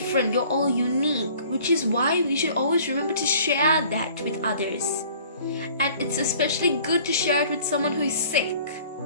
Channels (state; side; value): inverted; both; correlation -0.52